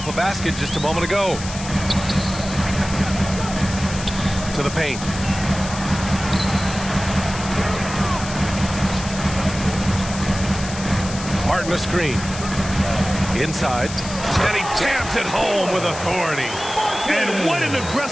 a basket just a moment ago. To the paint. Martin a screen. Inside. And he jams it home with authority. And what an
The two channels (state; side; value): noise; left; hiss, 11 dB below the sound